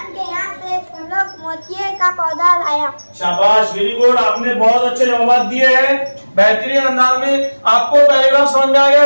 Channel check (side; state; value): both; inverted; correlation -1.00